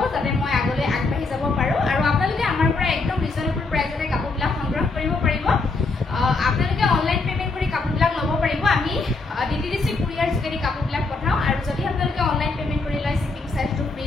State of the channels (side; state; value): right; quieter; 3.7 dB